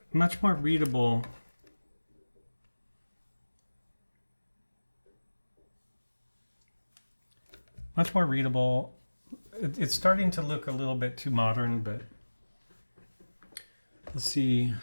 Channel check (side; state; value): both; inverted; correlation -1.00